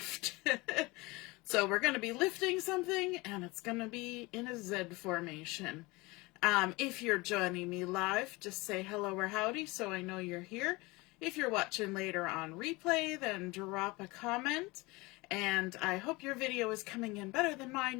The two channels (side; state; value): right; quieter; 23.5 dB